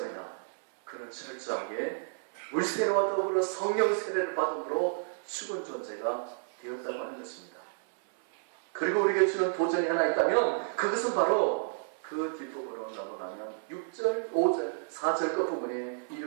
그는 철저하게 물세례와 더불어 성령 세례를 받음으로 죽은 존재가 되었다고 하는 것입니다. 그리고 우리에게 주는 도전이 하나 있다면 그것은 바로 그 뒷부분으로 넘어가면 6절, 5절, 4절 끝부분에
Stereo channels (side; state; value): left; silent; 57 dB below the other